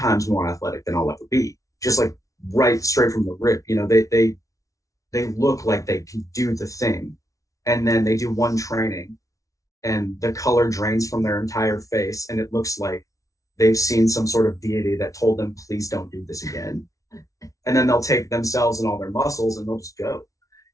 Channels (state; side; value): late; right; 0.16 ms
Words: more athletic than I'll ever be, just like right straight from the rip. They look like they can do the thing. And then they do one training and the color drains from their entire face. And it looks like they've seen some sort of deity that told them, please don't do this again. And then they'll take themselves and all their muscles and they'll just go.